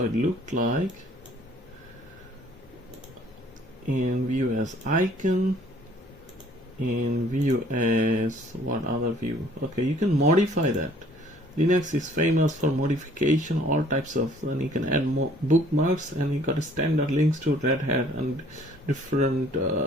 it looked like. And view as icon. And view as what other view? Okay, you can modify that. Linux is famous for modification, all types of, and you can add more bookmarks, and you got a standard links to Red Hat and different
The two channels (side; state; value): both; normal; correlation 0.57